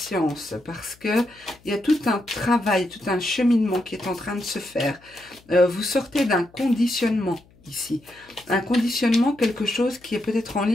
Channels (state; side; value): noise; left; hum, 29 dB below the sound